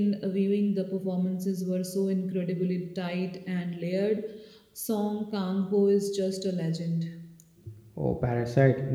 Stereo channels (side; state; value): both; identical; correlation 1.00